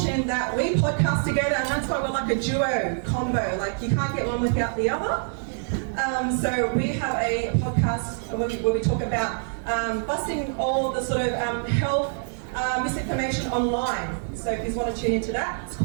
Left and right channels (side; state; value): left; silent; digital silence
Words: that we podcast together, and that's why we're like a duo combo. Like, you can't get one without the other. So we have a podcast where we talk about busting all the sort of health misinformation online. So if you want to tune into that, it's